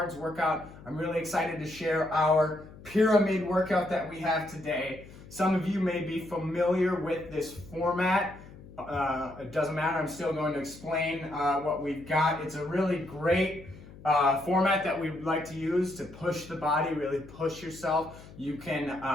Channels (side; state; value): left; noise; hum, 19 dB below the sound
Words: workout. I'm really excited to share our pyramid workout that we have today. Some of you may be familiar with this format. It doesn't matter, I'm still going to explain what we've got. It's a really great format that we like to use to push the body, really push yourself. You